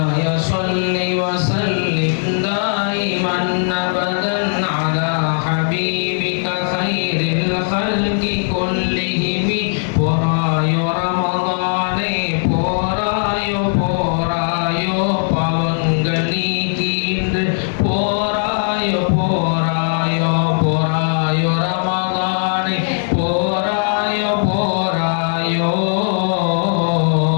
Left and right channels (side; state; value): right; silent; 58 dB below the other